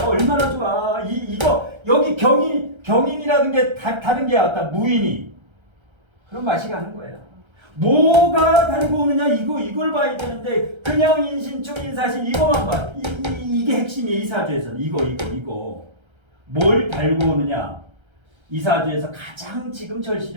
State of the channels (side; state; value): left; late; 1.3 ms